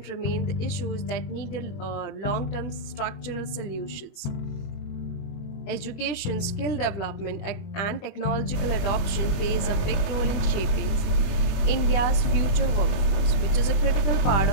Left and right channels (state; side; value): late; right; 20 ms